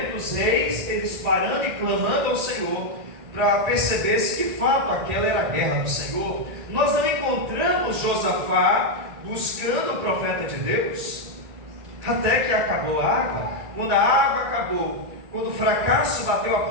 os reis eles parando e clamando ao Senhor para perceber se de fato aquela era a guerra do Senhor. Nós não encontramos Josafá buscando o profeta de Deus, até que acabou a água. Quando a água acabou, quando o fracasso bateu a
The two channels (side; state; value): left; late; 1.9 ms